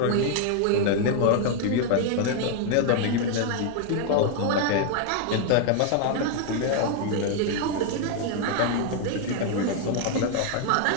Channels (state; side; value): different; both; correlation 0.00